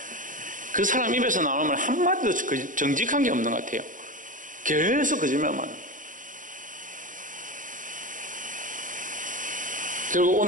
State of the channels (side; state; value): left; late; 0.38 ms